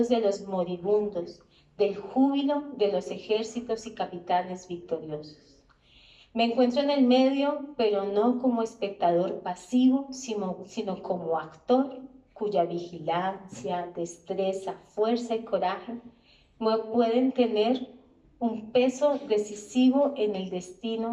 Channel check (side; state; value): both; identical; correlation 1.00